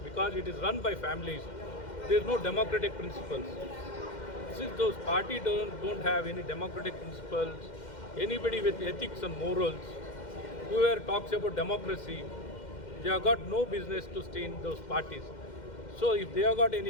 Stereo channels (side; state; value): right; late; 2.1 ms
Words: because it is run by families. There is no democratic principles. Since those parties don't have any democratic principles, anybody with ethics and morals, whoever talks about democracy, they have got no business to stay in those parties. So if they have got